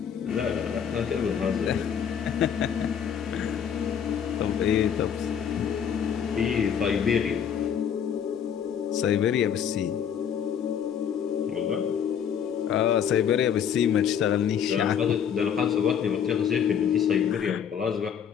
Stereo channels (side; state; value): right; quieter; 8.2 dB